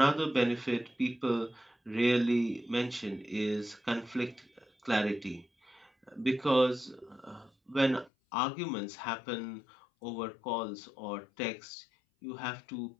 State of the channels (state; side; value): drops out; right; at 8.1 s